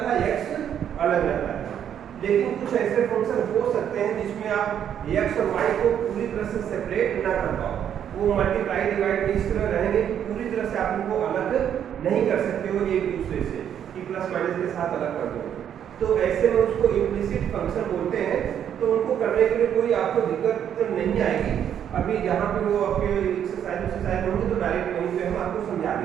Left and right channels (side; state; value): left; quieter; 9.3 dB